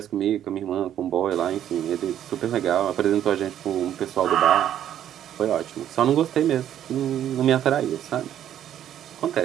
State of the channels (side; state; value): left; quieter; 10.7 dB